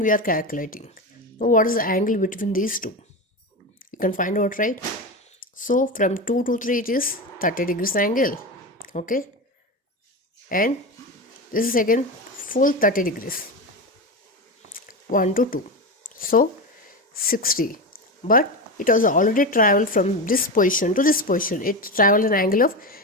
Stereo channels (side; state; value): both; normal; correlation 0.20